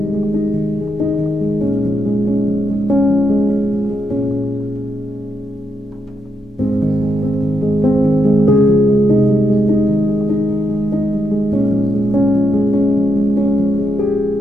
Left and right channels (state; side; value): normal; both; correlation 0.82